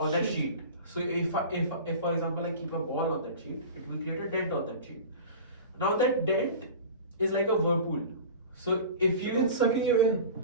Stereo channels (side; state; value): both; inverted; correlation -0.36